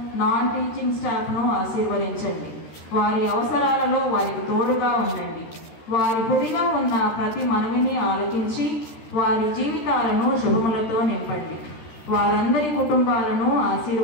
నాన్ టీచింగ్ స్టాఫ్ను ఆశీర్వదించండి. వారి అవసరాలలో వారికి తోడుగా ఉండండి. వారి హృదయంలో ఉన్న ప్రతి మనవిని ఆలకించి వారి జీవితాలను శుభములతో నింపండి. వారందరి కుటుంబాలను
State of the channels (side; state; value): right; late; 13 ms